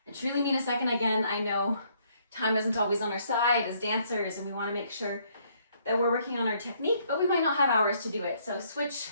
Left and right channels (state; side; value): inverted; both; correlation -0.67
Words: I truly mean a second. Again, I know time isn't always on our side as dancers and we wanna make sure that we're working on our technique, but we might not have hours to do it. So switch